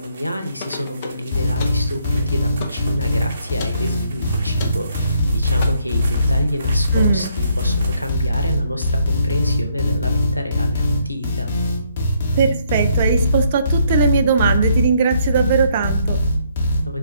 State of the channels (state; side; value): inverted; both; correlation -0.70